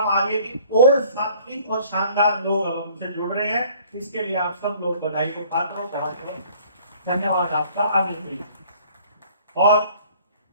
आ रही है कि और सात्विक और शानदार लोग अब हमसे जुड़ रहे हैं। इसके लिए आप सब लोग बधाई को पात्र हो, धन्यवाद आपका। आगे और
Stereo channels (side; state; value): both; inverted; correlation -0.54